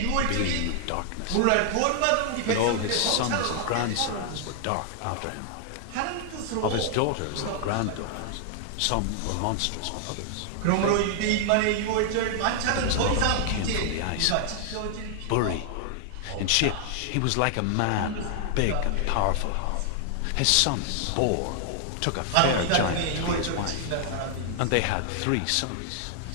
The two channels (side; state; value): both; different; correlation 0.00